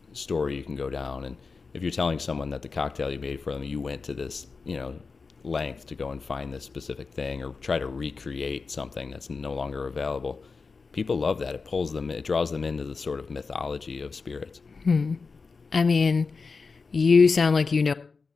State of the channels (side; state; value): right; quieter; 4.6 dB